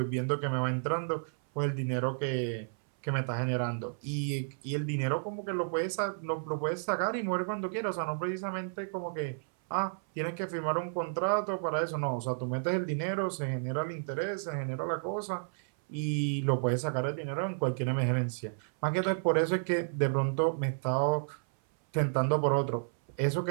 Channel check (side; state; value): left; silent; 57 dB below the other